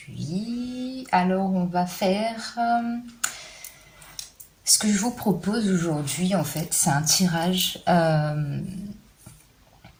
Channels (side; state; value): both; identical; correlation 1.00